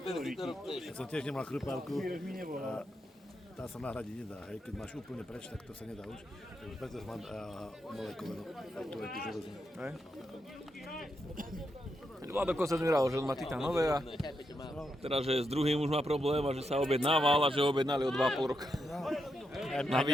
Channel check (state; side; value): normal; both; correlation 0.83